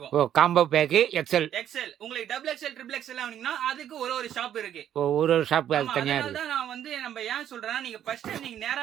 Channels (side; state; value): left; quieter; 10.5 dB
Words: Combo pack XL. உங்களுக்கு டபுள் எக்ஸல், ட்ரிபிள் எக்ஸல் வாங்குனீங்கன்னா அதுக்கு ஒரு ஷாப் இருக்கு. ஒரு ஷாப் தனியா இருக்கு. அதனால நான் வந்து நம்ம ஏன் சொல்றேன்னா, நீங்க ஃபர்ஸ்ட் நீங்க